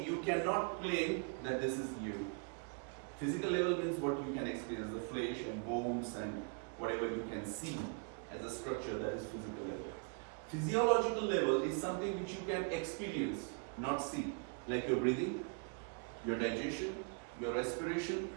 you cannot claim that this is you. Physical level means what you can experience, the flesh and bones and whatever you can see as a structure, that is physical level. Physiological level is something which you can experience, not see, like your breathing, your digestion, your respiration,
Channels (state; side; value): quieter; left; 36.7 dB